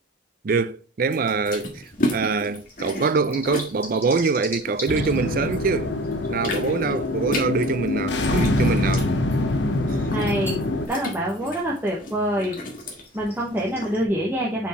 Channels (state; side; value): normal; both; correlation 0.41